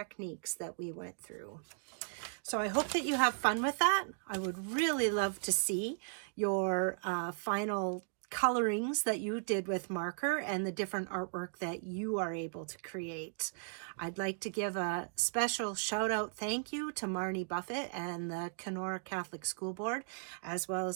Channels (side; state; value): left; silent; digital silence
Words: that we went through. So I hope that you have fun with that. I would really love to see your final colorings that you did with marker and the different artwork that you are able to create. I'd like to give a special shout out thank you to Marnie Buffett and the Kenora Catholic School Board, as well